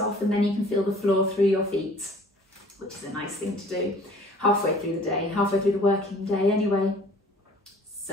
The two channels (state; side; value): normal; both; correlation 0.51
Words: and then you can feel the floor through your feet, which is a nice thing to do halfway through the day, halfway through the working day anyway.